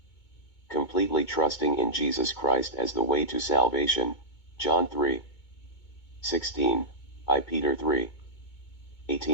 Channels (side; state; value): right; late; 2.2 ms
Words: completely trusting in Jesus Christ as the way to salvation, John 3:16, I Peter